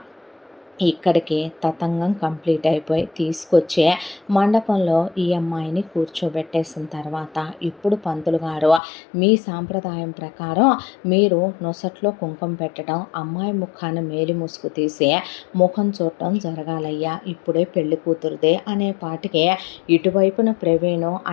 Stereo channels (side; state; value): right; drops out; at 8.8 s